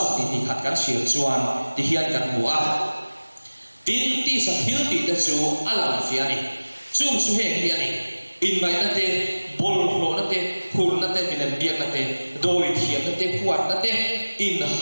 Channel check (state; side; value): inverted; both; correlation -1.00